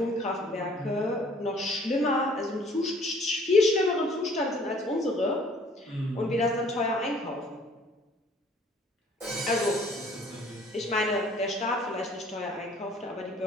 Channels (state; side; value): normal; both; correlation 0.56